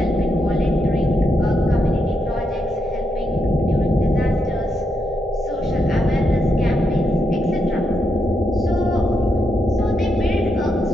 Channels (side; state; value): both; normal; correlation 0.81